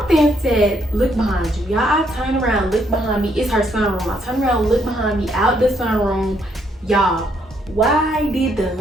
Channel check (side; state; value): both; normal; correlation 0.72